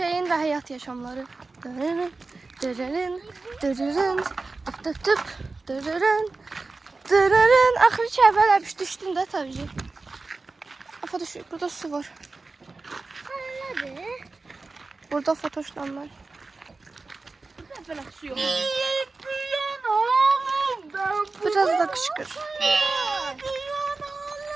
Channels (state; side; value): quieter; left; 3.7 dB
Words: də həyat yaşamları. Dırırın. Dırırın. Dırırın. Tıp tıp tıp. Dırırın. Dırırın. Axırı ki əvvəl əbiş düşdüm də tabii ki. Afa düşür. Burada su var. Nedir? Burada fotoşlanlar. Böyle su yok. Biraz da qışqır.